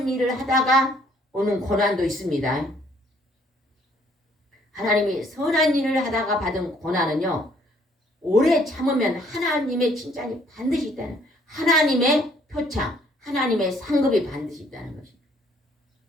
일을 하다가 오는 고난도 있습니다. 하나님이 선한 일을 하다가 받은 고난은요. 오래 참으면 하나님의 칭찬이 반드시 있다는 하나님의 표창, 하나님의 상급이 반드시 있다는 것입니다.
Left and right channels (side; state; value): both; normal; correlation 0.63